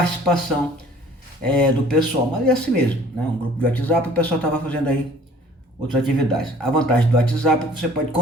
do pessoal, mas é assim mesmo, né? Um grupo de WhatsApp, o pessoal estava fazendo aí outras atividades. A vantagem do WhatsApp é que você pode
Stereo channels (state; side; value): normal; both; correlation 0.52